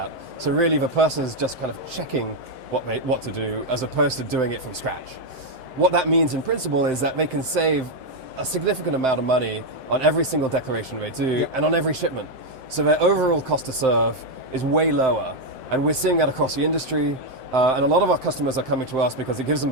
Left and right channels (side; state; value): left; late; 7.7 ms